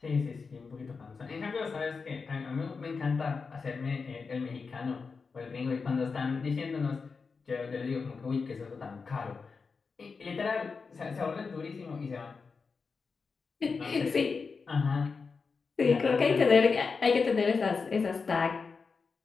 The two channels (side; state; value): right; quieter; 4.9 dB